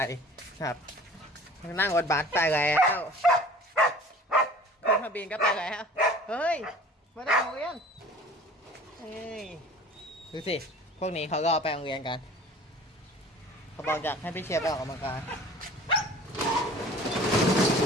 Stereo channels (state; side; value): normal; both; correlation 0.45